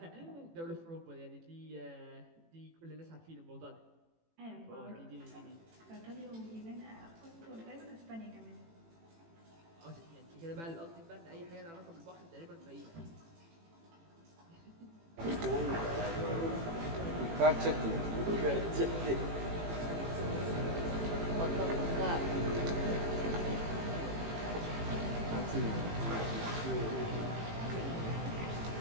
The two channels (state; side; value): late; left; 18 ms